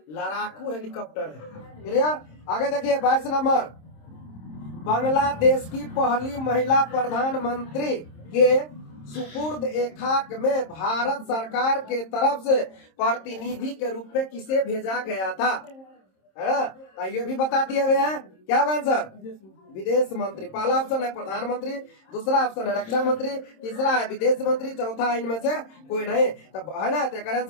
लड़ाकू हेलीकॉप्टर है, क्लियर। आगे देखिए 22 नंबर, बांग्लादेश की पहली महिला प्रधानमंत्री के सुपुर्द ए खाक में भारत सरकार के तरफ से प्रतिनिधि के रूप में किसे भेजा गया था, है ना। ये भी बता दिए हुए हैं, क्या आंसर, विदेश मंत्री। पहला ऑप्शन है प्रधानमंत्री, दूसरा ऑप्शन है रक्षा मंत्री, तीसरा है विदेश मंत्री, चौथा है इनमें से कोई नहीं। तब है ना, तो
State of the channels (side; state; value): right; late; 26 ms